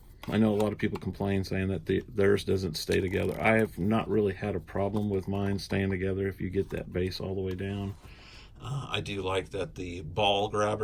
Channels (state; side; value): identical; both; correlation 1.00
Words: know a lot of people complain saying that theirs doesn't stay together. I have not really had a problem with mine staying together if you get that base all the way down. I do like that the ball